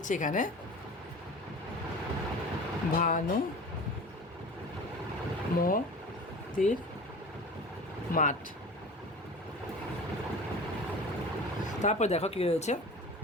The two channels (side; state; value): both; normal; correlation 0.37